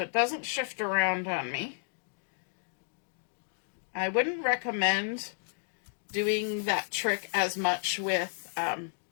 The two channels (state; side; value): silent; right; digital silence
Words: it doesn't shift around on me. I wouldn't recommend doing that trick as much with